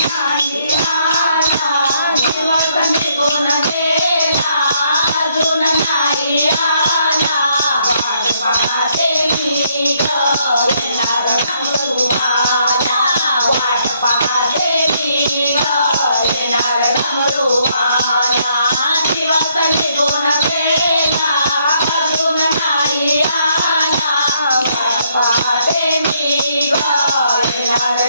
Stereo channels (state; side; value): inverted; both; correlation -0.71